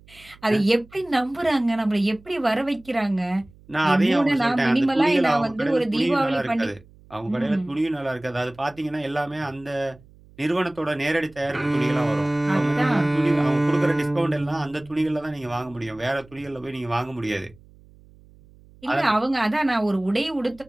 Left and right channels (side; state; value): right; noise; hum, 26 dB below the sound